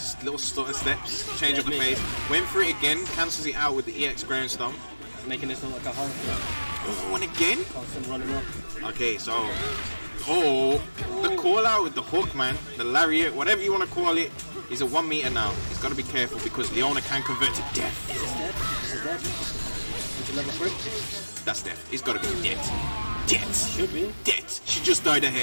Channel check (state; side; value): inverted; both; correlation -1.00